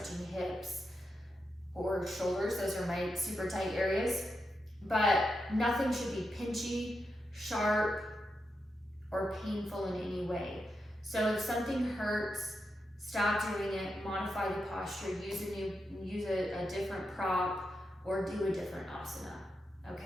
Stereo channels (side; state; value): both; normal; correlation 0.86